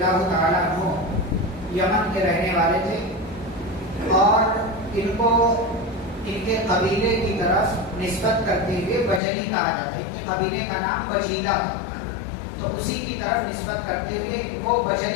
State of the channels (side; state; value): right; drops out; at 9.2 s